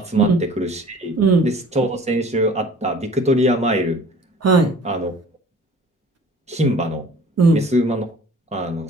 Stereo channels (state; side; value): normal; both; correlation 0.48